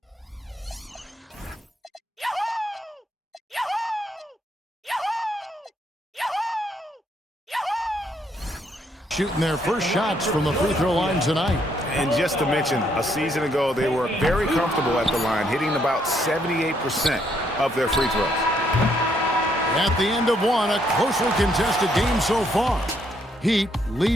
Shooting their first shots from the free throw line tonight. And just to mention, a season ago, they were very comfortable at the line, hitting about 78% of their free throws. At the end of one, a closely contested game so far. Heat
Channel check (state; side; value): normal; both; correlation 0.72